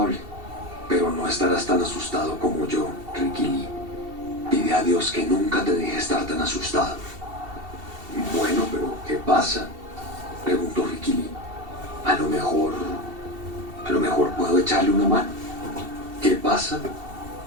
pero no estarás tan asustado como yo, Ricky Lee. Pide a Dios que nunca te deje estar tan asustado». «Bueno, pero ¿qué pasa?», preguntó Ricky Lee. A lo mejor puedo echarle una mano». «¿Qué pasa?».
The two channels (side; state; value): left; late; 2.7 ms